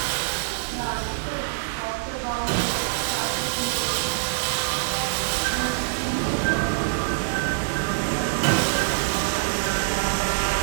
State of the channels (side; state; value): left; silent; 60 dB below the other